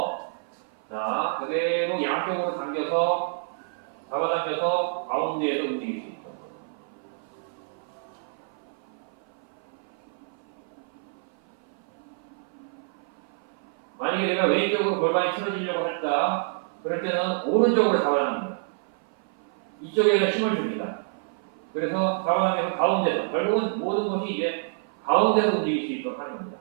자, 그대로 양쪽으로 잡아당겨서 가운데에서 움직일 수 있다. 만약에 내가 왼쪽으로 골반이 틀어지려고 했다. 그럴 때는 오른쪽으로 잡아당깁니다. 이쪽에다 힘을 줍니다. 그래서 잡아당겨서 가운데서, 결국은 모든 것이 이제 가운데서 움직일 수 있도록 하는 겁니다.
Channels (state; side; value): silent; left; 56 dB below the other